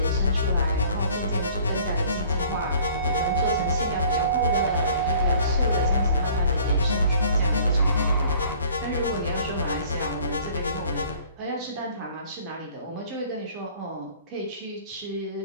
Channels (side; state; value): both; inverted; correlation -0.53